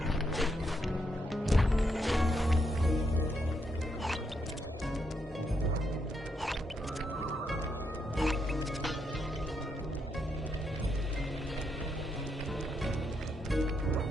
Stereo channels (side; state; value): both; normal; correlation 0.79